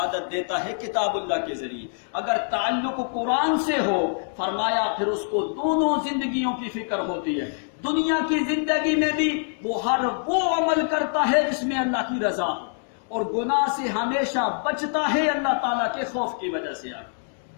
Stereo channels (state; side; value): silent; right; digital silence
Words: دیتا ہے کتاب اللہ کے ذریعے. اگر تعلق قرآن سے ہو، فرمایا پھر اس کو دونوں زندگیوں کی فکر ہوتی ہے. دنیا کی زندگی میں بھی وہ ہر وہ عمل کرتا ہے جس میں اللہ کی رضا ہو، اور گناہ سے ہمیشہ بچتا ہے اللہ تعالیٰ کے خوف کی وجہ سے.